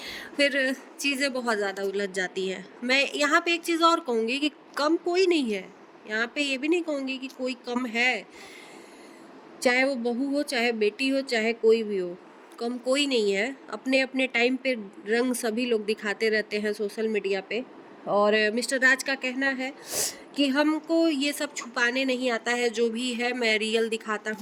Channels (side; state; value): both; identical; correlation 1.00